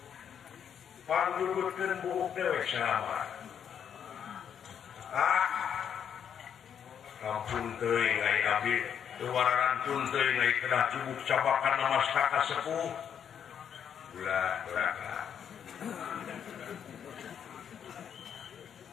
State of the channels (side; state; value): right; quieter; 8.3 dB